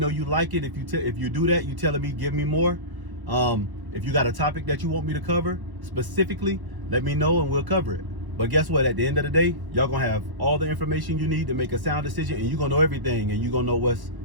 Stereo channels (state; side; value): late; left; 1.1 ms